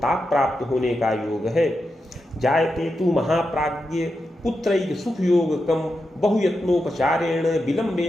ताप प्राप्त होने का योग है। जायते तु महाप्राज्ञ पुत्रैक सुख योगकम बहुयत्नोपचारेण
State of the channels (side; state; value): both; normal; correlation 0.88